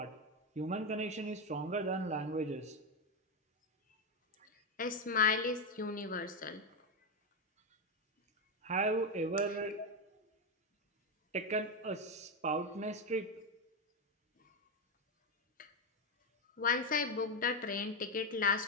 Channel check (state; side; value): normal; both; correlation 0.08